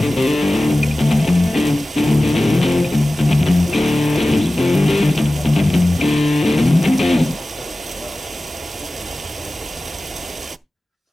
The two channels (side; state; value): both; normal; correlation 0.96